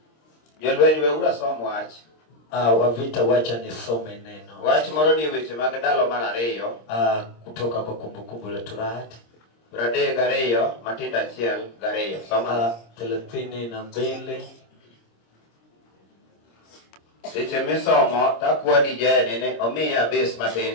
Jolwenyi weura som wach. Wavita wacha nisome neno. Wach moro ni weche mag ndalo mar ariyo. Kutoka kwa kumbukumbu la Torati. Brade gariyo matinda achiel gariyo. Soma 32. Seche misomo takwa DJ nene omiya base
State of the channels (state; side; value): late; right; 26 ms